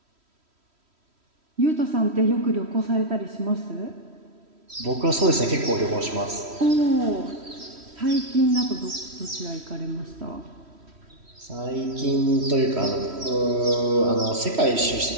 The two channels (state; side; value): late; left; 3.1 ms